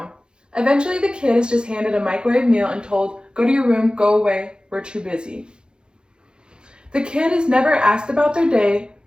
Eventually, the kid is just handed a microwave meal and told, go to your room, go away, we're too busy. The kid is never asked about their day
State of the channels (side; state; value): left; late; 0.049 ms